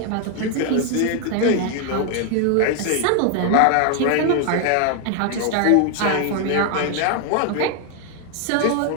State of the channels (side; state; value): both; different; correlation 0.00